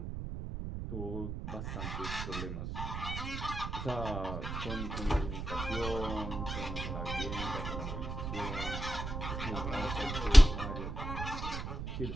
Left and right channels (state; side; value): noise; right; rumble, 5 dB below the sound